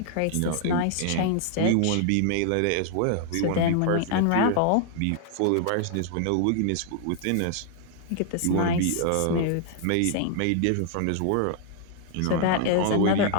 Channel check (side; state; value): both; different; correlation 0.00